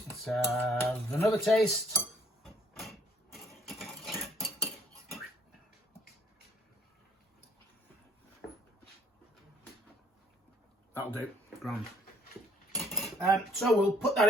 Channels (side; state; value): both; normal; correlation 0.62